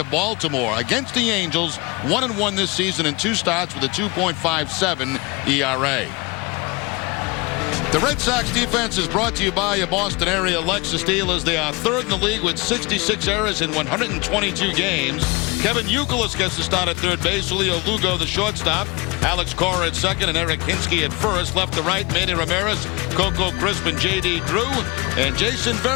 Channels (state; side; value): quieter; right; 26.0 dB